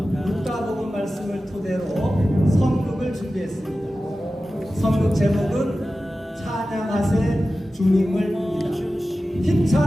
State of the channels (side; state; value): both; normal; correlation 0.95